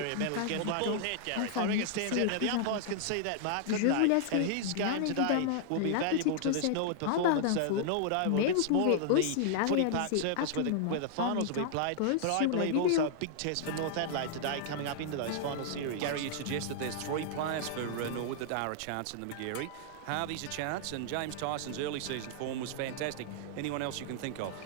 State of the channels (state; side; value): different; both; correlation -0.01